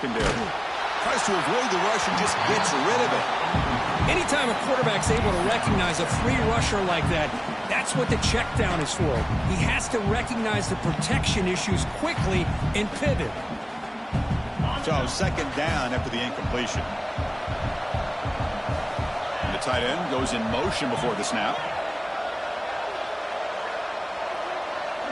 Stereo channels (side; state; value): both; identical; correlation 1.00